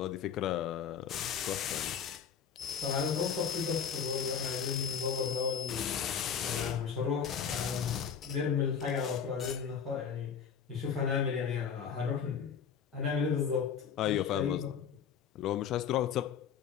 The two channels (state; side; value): quieter; right; 7.3 dB